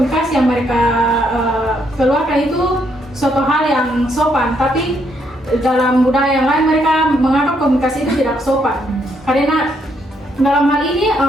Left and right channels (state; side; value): normal; both; correlation 0.74